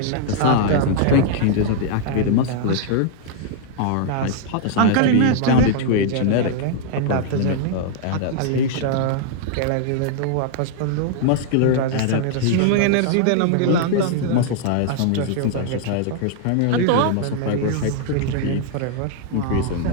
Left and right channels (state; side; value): different; both; correlation -0.01